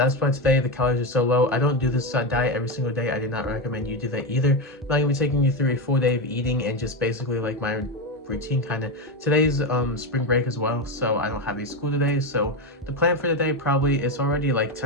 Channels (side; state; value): both; normal; correlation 0.13